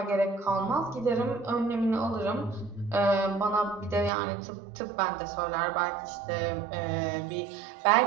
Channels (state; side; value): drops out; left; at 4.1 s